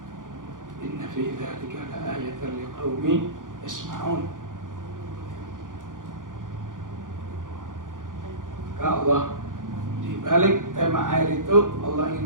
Inna fi dzalika laayatan liqaumin yasma'un. Maka Allah di balik tema air itu Allah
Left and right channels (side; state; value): left; late; 0.88 ms